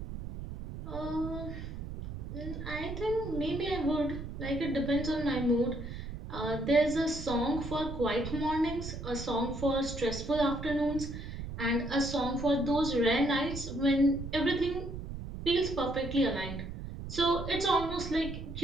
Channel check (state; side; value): noise; right; rumble, 8 dB below the sound